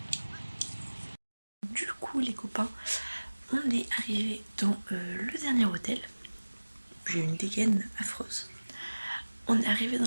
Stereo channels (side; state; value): both; inverted; correlation -1.00